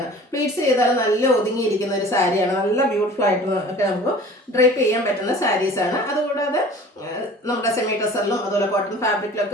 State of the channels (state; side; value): normal; both; correlation 0.44